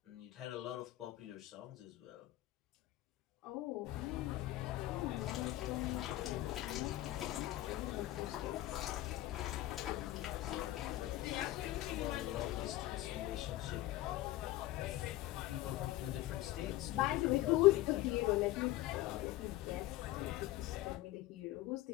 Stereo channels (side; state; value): right; quieter; 16.2 dB